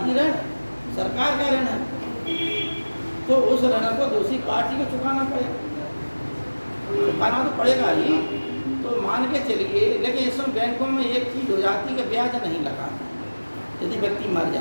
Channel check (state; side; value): inverted; both; correlation -1.00